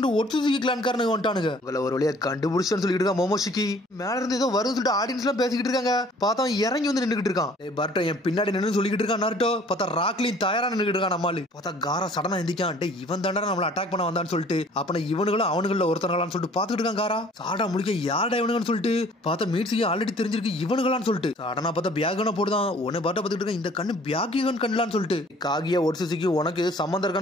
ஒட்சுசுகி கிளான்காரனுங்க வந்துட்டானுங்க. உங்களை ஒரு வழியா கண்டுபிடிச்சோன்னு சொல்லிட்டு இருக்கான் மோமோஷிக்கி. மேல இருந்து ஏதோ வரும்னு சொல்லிட்டு ஆடியன்ஸ் எல்லாம் பேசிக்கிட்டு இருக்காங்க. பார்த்தா அவன் இறங்கி வந்து நின்றுட்டு இருக்கான். பர்ட்டோ என் பின்னாடி நின்று சொல்லிக்கிட்டு இருக்கான். நாட்டோ பார்த்தா ராக்லின் தயாரா நின்றுட்டு இருக்கான். நம்மளு பார்த்தா காரா சடனா எந்திக்கான். டே இவன் தாண்டா நம்மள அட்டாக் பண்ண வந்தான்னு சொல்லிட்டு அப்ப இவனுங்களும் அவனுங்கள ஒருத்தர்களான்னு சொல்லிட்டு பாத்துக்கிட்டு இருக்கான். காரா சாடா முடிக்க யாரடா இவனுங்கன்னு சொல்லிட்டு பார்த்தா மீட்ஸுக்கு ஆல்ரெடி தெரிஞ்சிருக்கு இவனுங்களான்னு சொல்லிட்டு சாடனா பார்த்தா பியாகன போடுதான். உன்னை பாட்ட பார்த்துட்டு இருக்க இந்த கண்ணு பியாகிகன் கண்ணலான்னு சொல்லிட்டு காகியா ஒட்சுசுகி உனக்கு சம்பந்தம்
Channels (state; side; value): normal; both; correlation 0.54